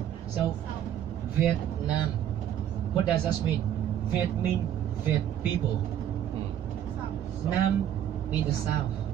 So, Vietnam, what does that mean? Viet mean Viet people. Nam mean the south.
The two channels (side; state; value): left; quieter; 10.4 dB